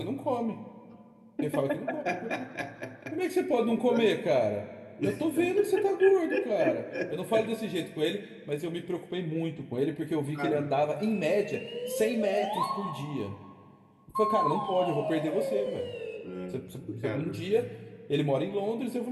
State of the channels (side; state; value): both; identical; correlation 1.00